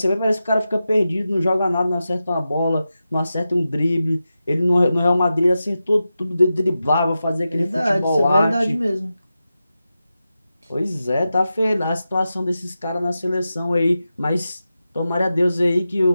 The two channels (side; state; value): both; inverted; correlation -0.91